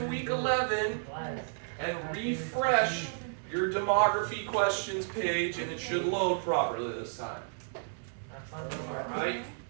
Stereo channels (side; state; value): left; silent; 56 dB below the other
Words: week 11 and refresh your demography questions page, and it should load properly this time. Alright?